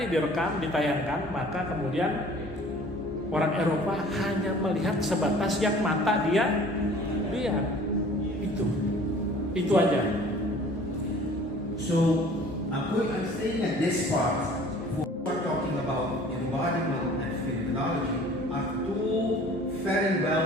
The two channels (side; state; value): both; normal; correlation 0.49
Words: direkam, ditayangkan, maka kemudian orang Eropa hanya melihat sebatas yang mata dia lihat. Itu aja. So I'm saying at this part, we're talking about embodiment and phenomenology are two very